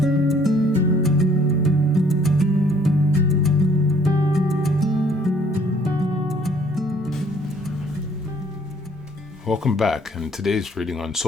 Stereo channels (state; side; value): normal; both; correlation 0.61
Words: Welcome back, and today's reading on